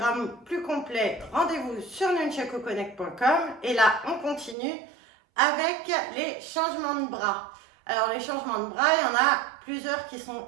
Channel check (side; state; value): left; drops out; at 4.5 s